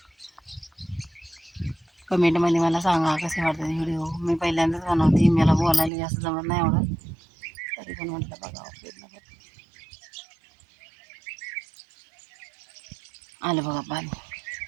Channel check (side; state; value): left; drops out; at 5.9 s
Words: कमेंटमध्ये मला सांगा कसे वाटतात व्हिडिओ. मी पहिल्यांदाच बनवते, मला बोलायला जास्त जमत नाही एवढं, तरी पण म्हटलं बघा प्रयत्न करते. आलं बघा पाणी,